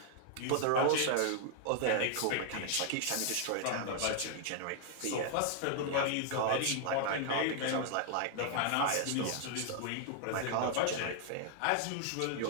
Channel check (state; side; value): different; both; correlation 0.00